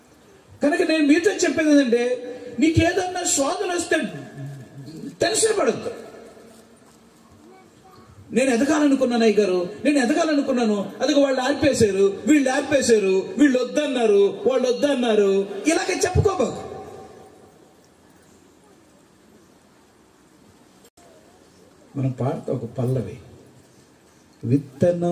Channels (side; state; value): both; identical; correlation 1.00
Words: కనుక నేను మీతో చెప్పేది ఏంటంటే, నీకేదన్నా శోధన వస్తే టెన్షన్ పడద్దు. నేను ఎదగాలనుకున్నాను అయ్యగారు, నేను ఎదగాలనుకున్నాను, అదిగో వాళ్ళు ఆర్పేశారు, వీళ్ళు ఆర్పేశారు, వీళ్ళు వద్దన్నారు, వాళ్ళు వద్దన్నారు, ఇలాగ చెప్పుకోబాకు. మనం పాడతా ఒక పల్లవి,